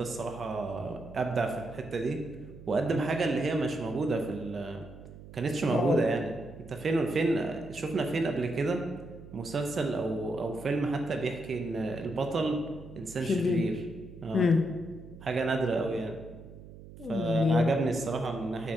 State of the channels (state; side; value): noise; right; hum, 16 dB below the sound